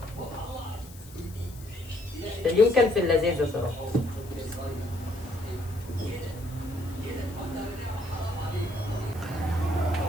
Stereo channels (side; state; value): left; noise; hiss, 20 dB below the sound